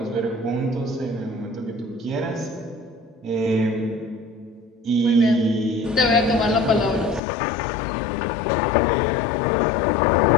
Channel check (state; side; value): drops out; right; at 7.2 s